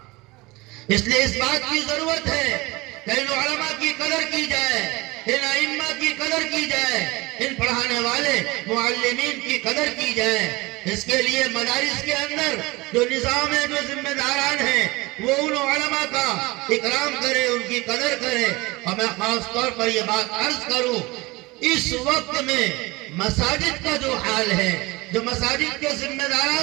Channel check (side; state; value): left; quieter; 22.7 dB